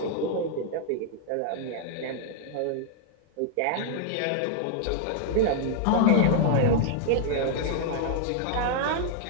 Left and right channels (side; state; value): both; different; correlation -0.01